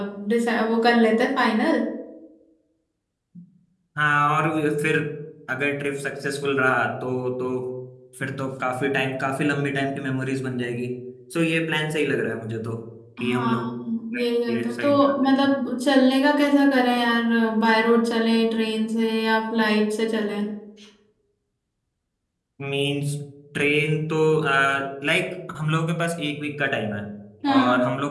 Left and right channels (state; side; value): identical; both; correlation 1.00